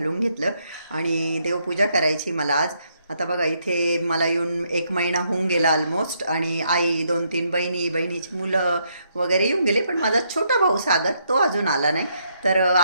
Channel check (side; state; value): both; inverted; correlation -0.74